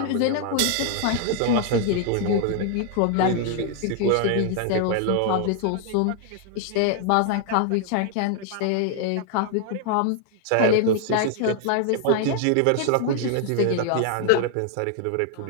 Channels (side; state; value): both; different; correlation 0.00